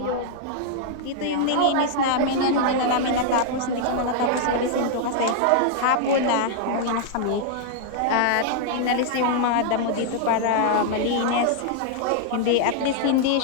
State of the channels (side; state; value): both; different; correlation -0.01